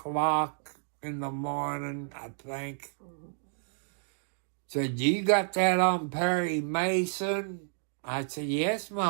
in the morning, I think. Said, you got that on Perry Mason? I said, yes,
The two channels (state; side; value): silent; left; digital silence